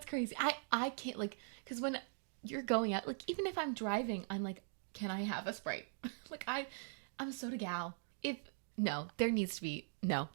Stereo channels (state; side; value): silent; left; digital silence